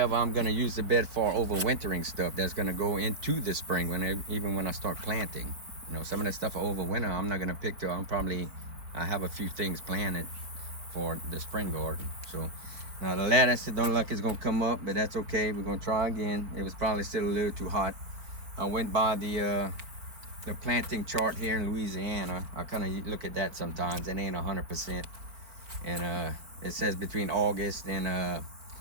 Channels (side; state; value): left; late; 4.4 ms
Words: I'm gonna use the bed for overwintering stuff that's gonna go into the spring even when I start planting. You know, some of that stuff for overwinter I'm not gonna pick till I have a few things planted for the spring garden. So now the lettuce, it don't look like it's gonna come up, but that's okay. We're gonna try again. It was probably still a little too hot. I went by the planting chart here in Louisiana. I kind of look at that sometimes. It ain't 100%. And it says between August and